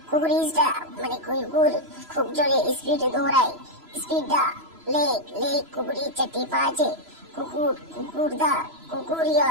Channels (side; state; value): left; late; 3.0 ms